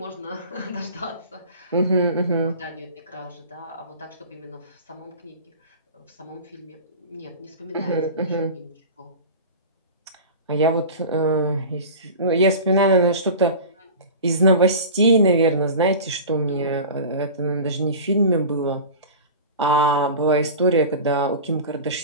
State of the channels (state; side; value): inverted; both; correlation -0.35